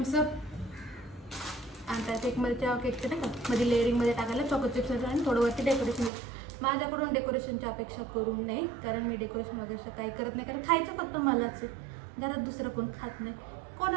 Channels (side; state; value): left; drops out; at 6.1 s